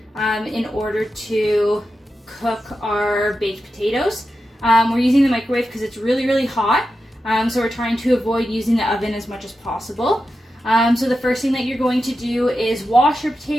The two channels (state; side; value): normal; both; correlation 0.90